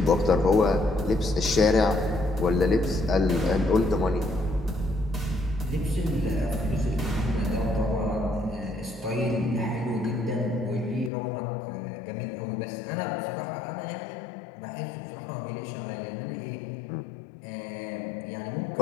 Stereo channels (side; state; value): right; drops out; at 11.1 s